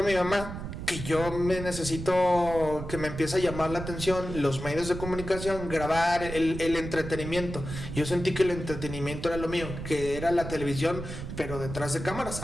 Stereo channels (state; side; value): noise; right; rumble, 8 dB below the sound